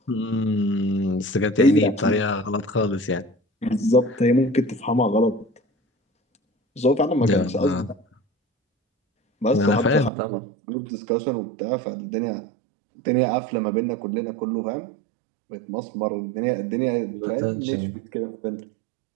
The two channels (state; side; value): drops out; left; at 10.1 s